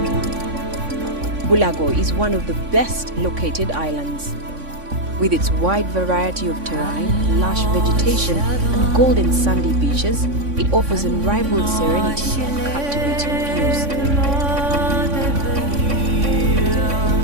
Bulago is one of the best located islands. With its wide variety of terrain, lush vegetation and golden sandy beaches, it offers unrivaled serenity and captivating views.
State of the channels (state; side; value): late; left; 3.5 ms